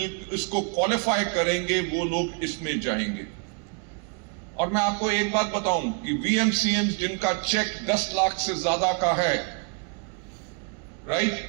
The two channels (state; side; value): quieter; left; 36.7 dB